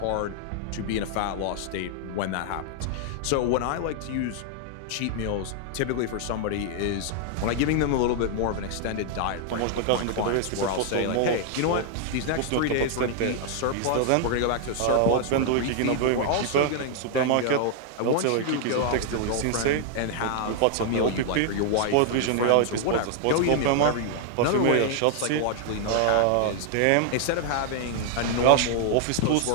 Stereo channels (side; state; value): both; different; correlation 0.00